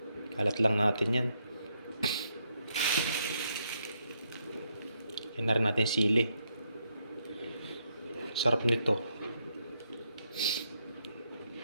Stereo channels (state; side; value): inverted; both; correlation -0.78